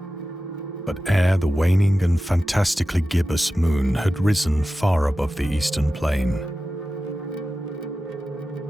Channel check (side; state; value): both; normal; correlation 0.94